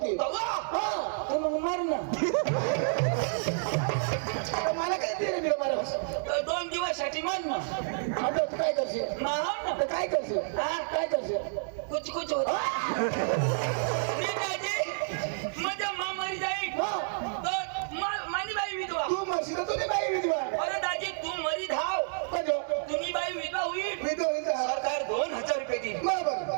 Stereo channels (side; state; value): left; silent; digital silence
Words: दवा हा तर मग मार ना मला काय दिलं दिलं मला 2 दिवसासाठी मान ना आता तू काय करशील माहाव ना तर काय करशील हा काय करशील कुछ होत मी दाजी माझ्या मरी जाईल हा तर मानी बाई विधवा तू मरशील तर तुझी बाई विधवा अरे दाजी तू मरी धाव कजो तुम्ही बाई विधवा होईल विधवा होईल सरकार 2000 रुपये देईल बरोबर